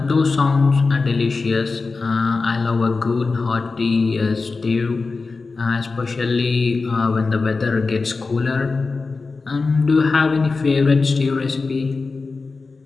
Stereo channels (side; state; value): right; quieter; 4.1 dB